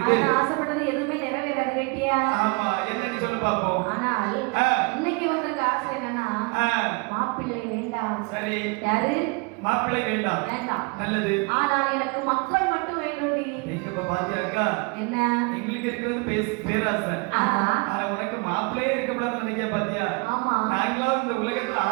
ஆனா ஆசைப்பட்டது எதுவுமே நிறைவேறாது கேட்டியா? ஆமா, என்னன்னு சொல்லு பாப்போம். ஆனால் இன்னைக்கு வந்திருக்க ஆசை என்னன்னா மாப்பிள்ளை வேண்டாம். சரி. யாரு? மாப்பிள்ளை வேண்டாம். வேண்டாம். நல்லது. ஆனால் எனக்கு மக்கள் மட்டும் வேண்டும்டி. நீங்க இப்ப பாத்தியாக்கா? என்ன? எங்களுக்கு இருக்கிறது பேராசை. ஆனா உனக்கு மாப்பிள்ளையே இருக்கக்கூடாதுன்னு நினைக்க பாத்தியா? ஆமா. நாங்களும் இந்த உலகத்துல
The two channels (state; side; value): quieter; left; 31.0 dB